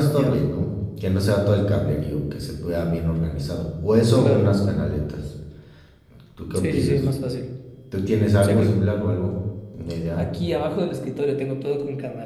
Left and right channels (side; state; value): both; identical; correlation 1.00